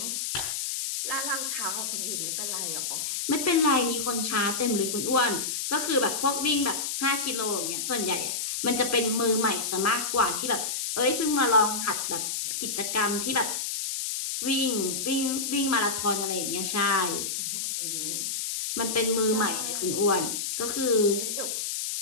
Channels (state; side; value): noise; left; hiss, 2 dB below the sound